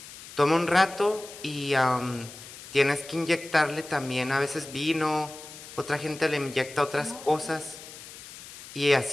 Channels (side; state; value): left; noise; hiss, 15 dB below the sound